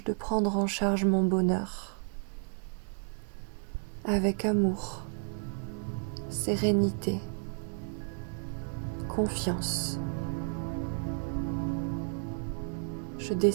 de prendre en charge mon bonheur. Avec amour, sérénité, confiance. Je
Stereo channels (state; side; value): silent; left; 56 dB below the other